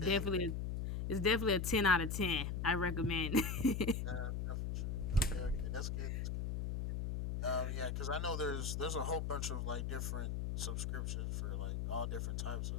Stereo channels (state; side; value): noise; left; hum, 2 dB below the sound